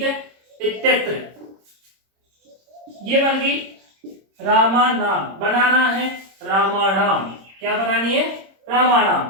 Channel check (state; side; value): late; left; 26 ms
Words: है इत्यत्र, ये बन गई रामा नाम, बनाना है रामानाम, क्या बनानी है